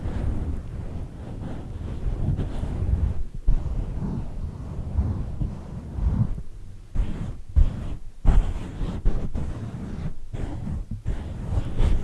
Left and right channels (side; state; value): both; identical; correlation 1.00